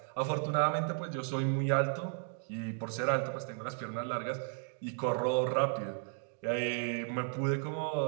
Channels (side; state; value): left; silent; 55 dB below the other